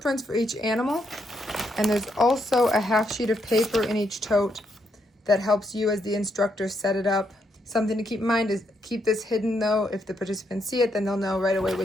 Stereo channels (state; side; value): normal; both; correlation 0.77